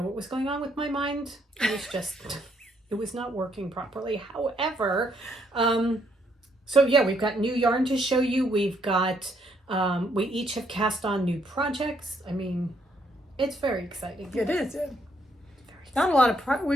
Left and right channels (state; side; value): normal; both; correlation 0.71